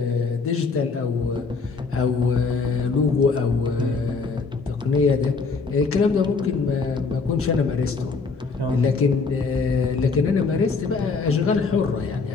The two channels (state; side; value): quieter; right; 4.5 dB